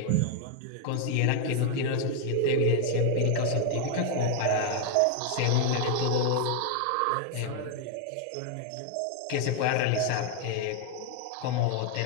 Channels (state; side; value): different; both; correlation 0.00